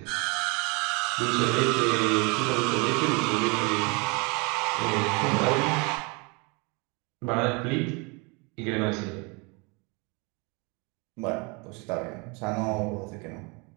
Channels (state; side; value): quieter; left; 30.0 dB